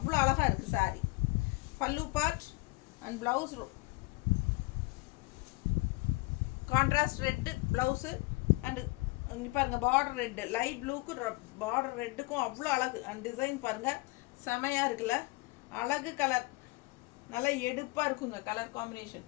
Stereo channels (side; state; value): right; quieter; 24.6 dB